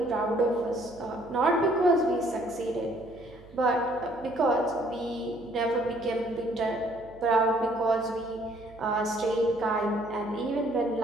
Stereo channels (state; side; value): noise; right; hum, 23 dB below the sound